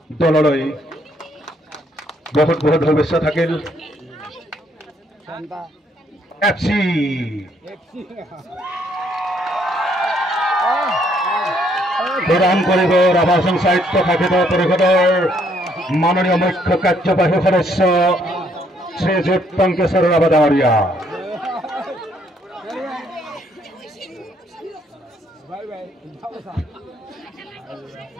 দললৈ বহুত বহুত শুভেচ্ছা থাকিল এফচি প্ৰদান কৰিব ৰাভা হাছন সাহিত্য শাখিত পৰিষদৰ মাননীয় মুখ্য কাৰ্যবাহী সদস্য শ্ৰীযুত টংকেশ্বৰ ৰাভা ডাঙৰীয়া।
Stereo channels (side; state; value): both; normal; correlation 0.69